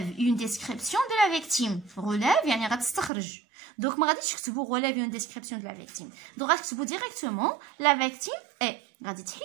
une description de la victime. Relève يعني غتستخرج. Donc ما غاديش تكتبوا relève une description de la victime. Donc غتكتبوا directement la victime est. غادي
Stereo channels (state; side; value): drops out; left; at 3.1 s